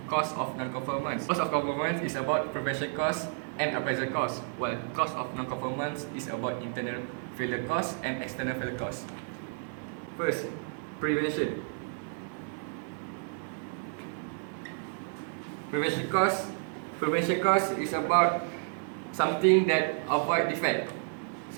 cost of non-conformance. Cost of conformance is about prevention cost and appraisal cost, while cost of non-conformance is about internal failure cost and external failure cost. First, prevention. Prevention cost is about something that avoid defect,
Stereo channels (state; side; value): silent; left; 57 dB below the other